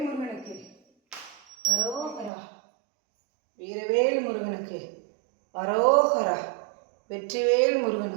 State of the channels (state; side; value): drops out; left; at 2.3 s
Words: முருகனுக்கு அரோகரா. வீரவேல் முருகனுக்கு அரோகரா. வெற்றிவேல்